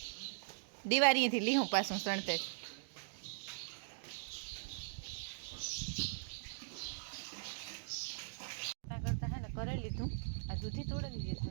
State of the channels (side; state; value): left; silent; digital silence